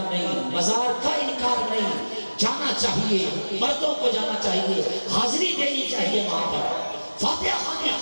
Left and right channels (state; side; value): inverted; both; correlation -1.00